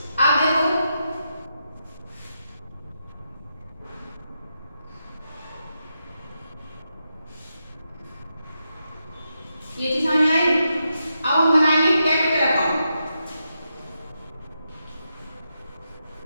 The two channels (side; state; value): both; inverted; correlation -0.86